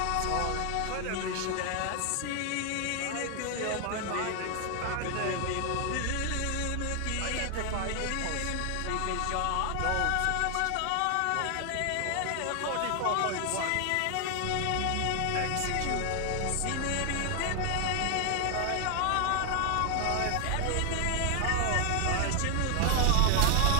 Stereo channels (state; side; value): different; both; correlation 0.00